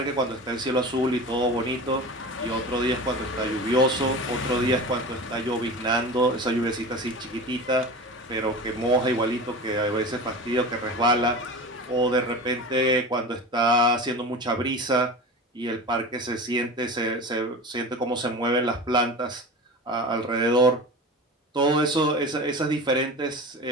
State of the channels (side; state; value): both; normal; correlation 0.32